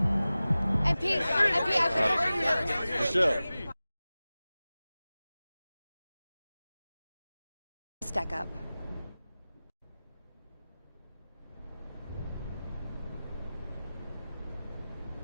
Michelle. Stack up.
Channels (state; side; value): inverted; both; correlation -0.97